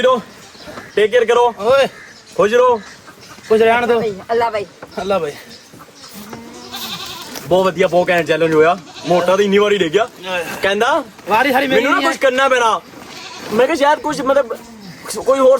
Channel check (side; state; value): both; identical; correlation 1.00